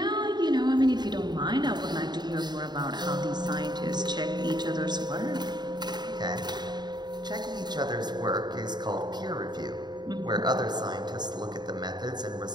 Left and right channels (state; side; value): late; left; 0.21 ms